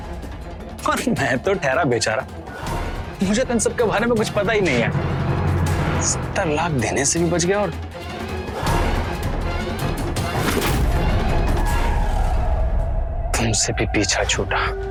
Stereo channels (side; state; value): both; identical; correlation 1.00